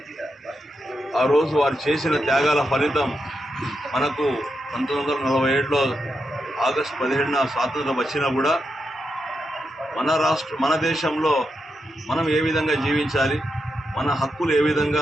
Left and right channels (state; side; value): normal; both; correlation 0.85